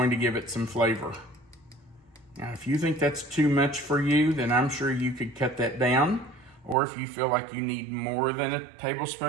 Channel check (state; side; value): drops out; left; at 6.8 s